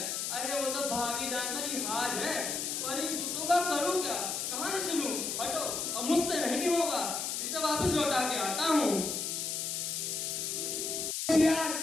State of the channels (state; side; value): noise; left; hiss, 2 dB below the sound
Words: अरे वो तो भाभी जान का लिहाज है, पर इन जूतों का करूं क्या, कहां से सुनूं? हटो, अब मुझसे नहीं होगा, इसे वापस लौटा के आता हूं। यार,